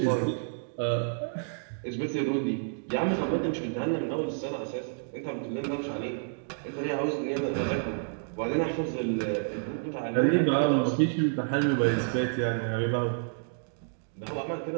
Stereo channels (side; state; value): left; silent; digital silence